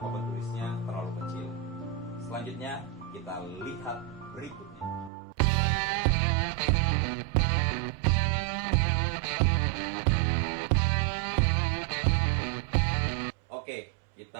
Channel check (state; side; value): drops out; left; at 5.1 s